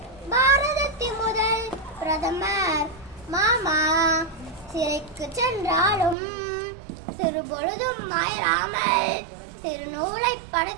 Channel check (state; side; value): drops out; left; at 6.2 s